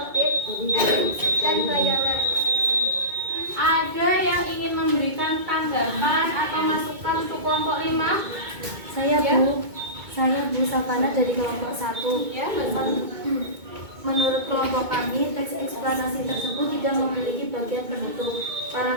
elips, dan bayangan. Ada yang ingin memberikan tanggapan atau masukan untuk kelompok 5? Saya Ya. Saya Bu Savana dari kelompok 1. Ya, betul. Menurut kelompok kami, teks eksplanasi tersebut tidak memiliki bagian penutup.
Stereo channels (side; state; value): left; late; 2.2 ms